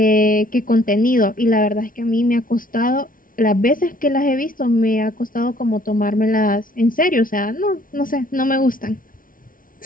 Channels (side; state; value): right; late; 0.40 ms